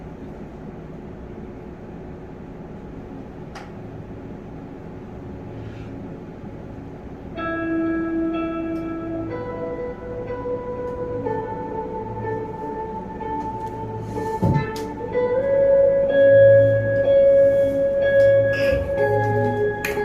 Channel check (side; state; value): both; identical; correlation 1.00